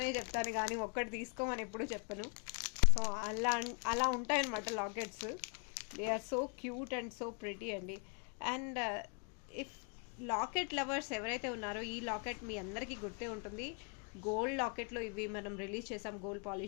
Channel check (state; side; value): quieter; right; 39.0 dB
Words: చెప్తాను, కానీ ఒక్కటి తీసుకోమని ఎప్పుడు చెప్పను. సో అలా ఉంటాయన్నమాట lockets. They are so cute and so pretty అండి. అండ్ ఇఫ్ లాకెట్ లవర్స్ ఎవరైతే ఉన్నారో ఈ లాకెట్ మీ అందరికీ గుర్తే ఉంటుంది. గోల్డ్ లాకెట్లో ఇవి మనం రిలీజ్ చేసాం గోల్డ్